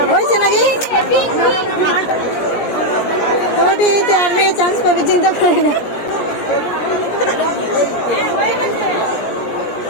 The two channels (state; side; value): late; right; 17 ms